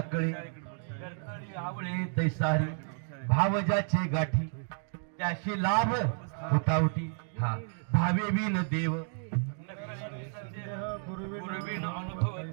करतळी आवळे तैसारी. भाव ज्याचे गाठी त्याशी लाभ उठावटी. हा भावे बिन देव नकळे निसंदेह गुरुबिन अनुभव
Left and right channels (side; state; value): left; silent; 57 dB below the other